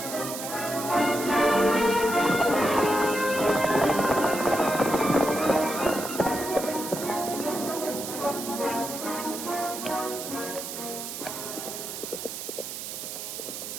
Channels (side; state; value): right; noise; hiss, 7 dB below the sound